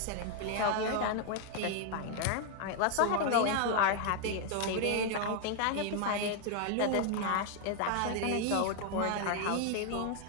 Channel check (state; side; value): different; both; correlation 0.00